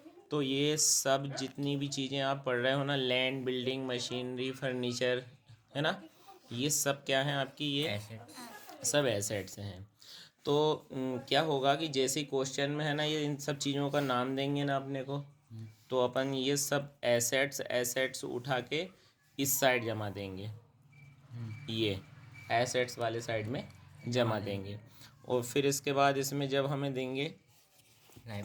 तो ये सब जितनी भी चीज़ें आप पढ़ रहे हो ना, लैंड, बिल्डिंग, मशीनरी, फर्नीचर, है ना, ये सब क्या है आपकी, ये सब एसेट्स हैं। तो क्या होगा कि जैसे ही क्वेश्चन में है ना, ये इन सब चीज़ों का नाम देंगे ना अपने को, तो अपन ये सब एसेट्स एसेट्स उठा के इस साइड जमा देंगे, ये एसेट्स वाले साइड में जमा देंगे। और फिर इसके बाद इसमें जब हमें देंगे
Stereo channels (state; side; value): identical; both; correlation 1.00